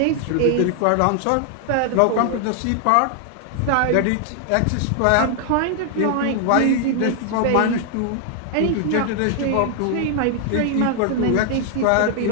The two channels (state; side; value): different; both; correlation 0.00